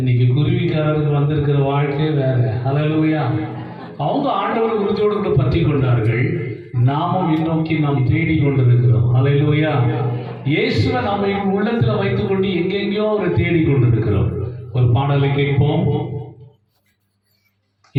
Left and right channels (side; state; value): both; identical; correlation 1.00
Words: குருவிக்காரர்கள் வந்திருக்கிற வாழ்க்கை வேற. ஹல்லேலூயா. அவங்க ஆண்டவர் உறுதியோடு கூட பற்றி கொண்டார்கள். நாமும் முன்னோக்கி நாம் தேடி கொண்டிருக்கிறோம். ஹல்லேலூயா. இயேசுவை நாம உள்ளத்துல வைத்துக் கொண்டு எங்கெங்கயோ ஒரு தேடி கொண்டிருக்கிறோம். ஒரு பாடலை கேட்போம்.